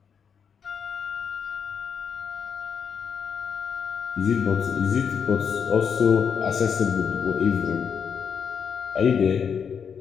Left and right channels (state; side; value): quieter; right; 6.9 dB